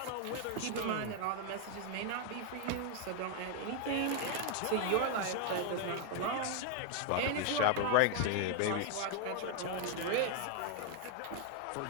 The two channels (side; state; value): both; different; correlation 0.00